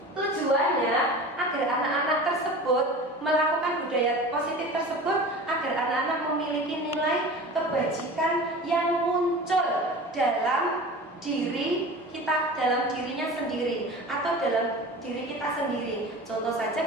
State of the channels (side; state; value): both; normal; correlation 0.36